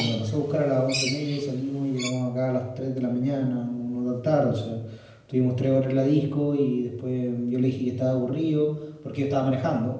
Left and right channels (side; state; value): both; identical; correlation 1.00